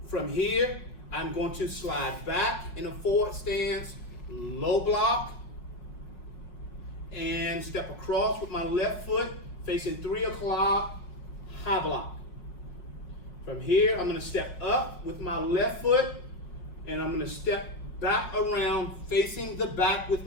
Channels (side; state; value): right; late; 5.5 ms